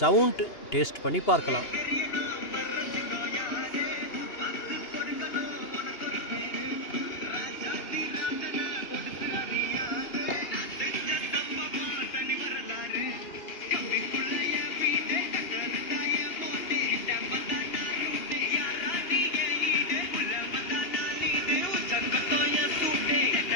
சவுண்ட் டெஸ்ட் பண்ணி பார்க்கலாம்.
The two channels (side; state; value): right; late; 2.8 ms